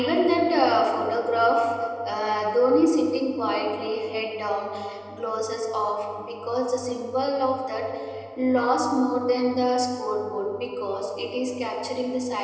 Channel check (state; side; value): identical; both; correlation 1.00